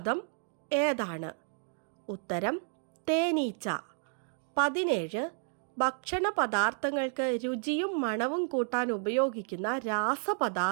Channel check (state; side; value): silent; left; 57 dB below the other